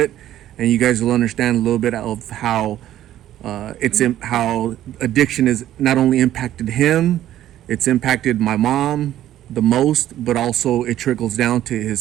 and you guys will understand a little bit of how how addiction has not only impacted him, it's impacted my mom the most, but also it trickles down to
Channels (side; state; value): left; quieter; 12.6 dB